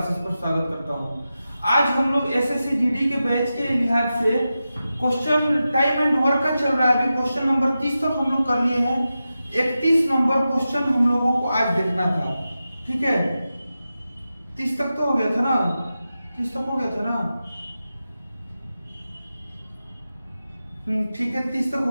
पर स्वागत करता हूं। आज हम लोग एसएससी जीडी के बैच के लिहाज से क्वेश्चन टाइम एंड वर्क का चल रहा है। अभी क्वेश्चन नंबर 30 तक हम लोग कर लिए हैं। 31 नंबर क्वेश्चन हम लोगों को आज देखना था। ठीक है, 30 तक तो हो गया था ना, 30 तक हो गया था ना। ठीक है, 30 तक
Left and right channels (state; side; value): inverted; both; correlation -0.92